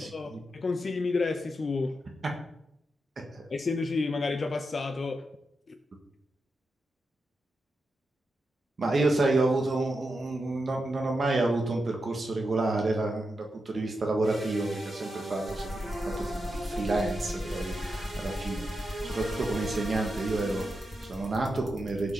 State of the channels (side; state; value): both; normal; correlation 0.87